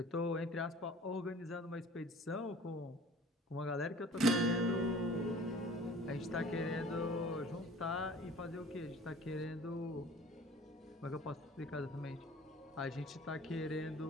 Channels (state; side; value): normal; both; correlation 0.47